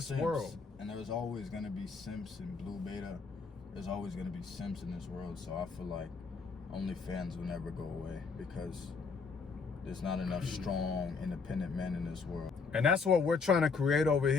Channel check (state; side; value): quieter; right; 4.9 dB